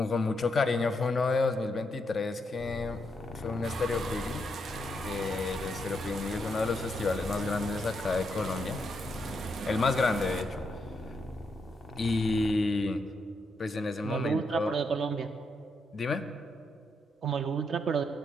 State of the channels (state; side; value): normal; both; correlation 0.80